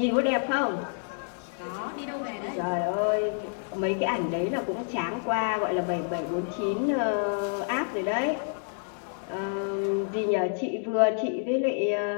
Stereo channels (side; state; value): right; silent; 59 dB below the other